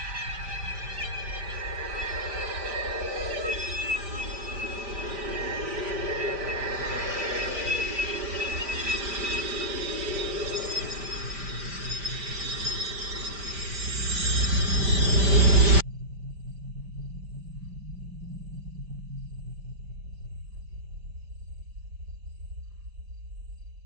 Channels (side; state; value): left; late; 5.1 ms